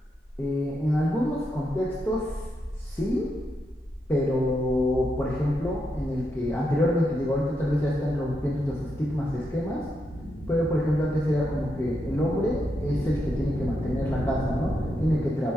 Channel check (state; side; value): normal; both; correlation 0.83